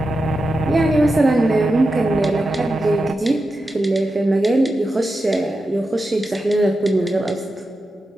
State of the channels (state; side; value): normal; both; correlation 0.90